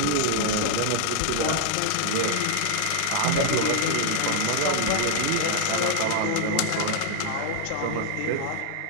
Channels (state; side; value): different; both; correlation -0.01